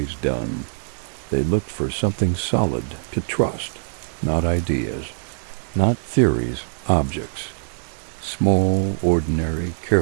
done. They looked for something solid to trust, not ideas, not theories, objects. Small, ordinary,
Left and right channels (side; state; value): left; silent; digital silence